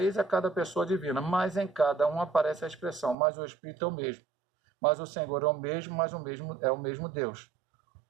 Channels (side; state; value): left; drops out; at 3.2 s